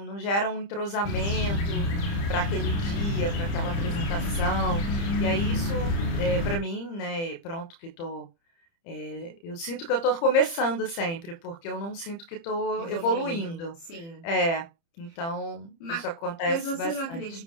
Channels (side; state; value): right; late; 30 ms